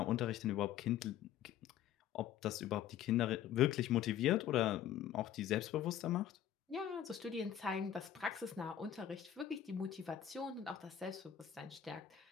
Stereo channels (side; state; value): right; quieter; 10.4 dB